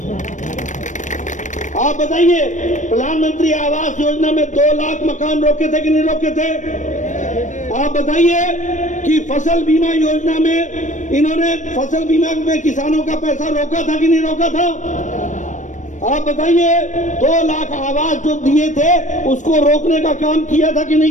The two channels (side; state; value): right; late; 0.36 ms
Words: आप बताइए, प्रधानमंत्री आवास योजना में 2 लाख मकान रोके थे कि नहीं रोके थे? आप बताइए कि फसल बीमा योजना में इन्होंने फसल बीमा में किसानों का पैसा रोका था कि नहीं रोका था? आप बताइए, 2 लाख आवास जो दिए थे उसको रोकने का काम किया था कि